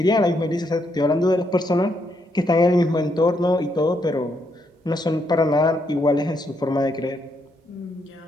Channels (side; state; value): both; normal; correlation 0.77